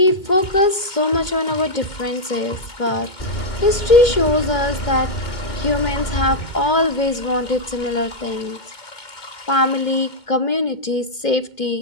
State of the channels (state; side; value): late; right; 2.2 ms